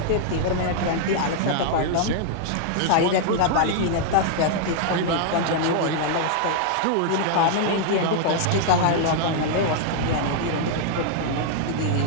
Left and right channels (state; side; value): different; both; correlation 0.00